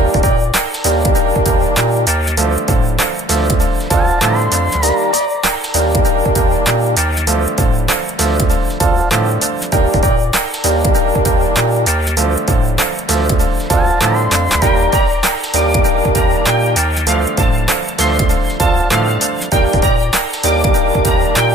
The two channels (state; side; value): normal; both; correlation 0.62